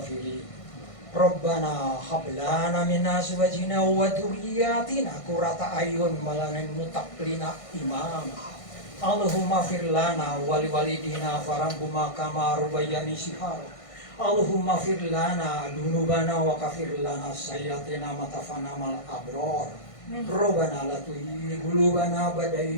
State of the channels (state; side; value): late; right; 1.5 ms